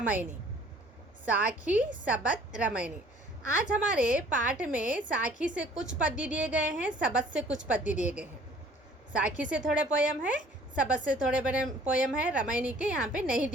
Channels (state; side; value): normal; both; correlation 0.54